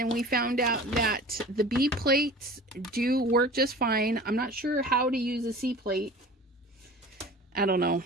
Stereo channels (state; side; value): normal; both; correlation 0.41